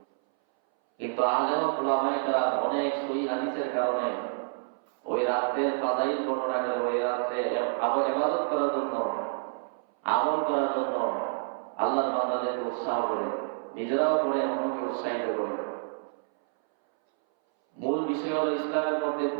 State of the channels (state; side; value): silent; left; 59 dB below the other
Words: কিন্তু আলেম উলামায়ে কেরাম অনেক সহিহ হাদিসের কারণে ওই রাতের ফাজাইল বর্ণনা করে ওই রাতে ইবাদত করার জন্য, আমল করার জন্য আল্লাহর বান্দাদেরকে উৎসাহ করে, নিজেরাও করে, অন্যকে উৎসাহিত করে। মূল বিষয় হলো ইসলামের মধ্যে